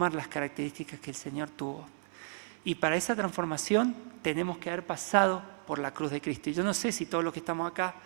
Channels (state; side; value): silent; left; 56 dB below the other